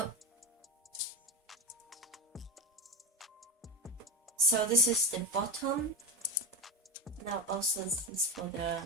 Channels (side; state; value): both; normal; correlation 0.25